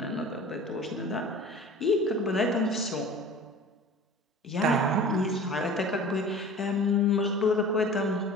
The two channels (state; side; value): normal; both; correlation 0.41